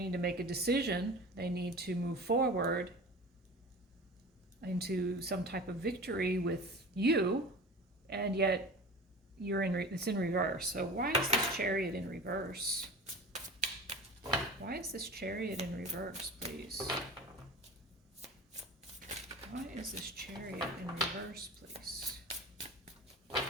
to make a decision. They need to move forward into some type of victory with you, and yet it's in reverse. So why is this Chariot in reverse? Why is this Chariot in reverse, please? Why is this Chariot in reverse, please?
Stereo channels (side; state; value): both; normal; correlation 0.36